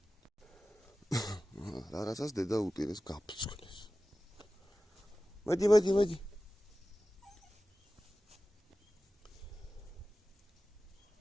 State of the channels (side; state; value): both; normal; correlation 0.95